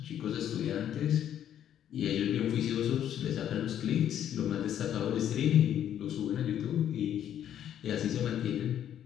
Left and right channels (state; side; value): quieter; right; 10.3 dB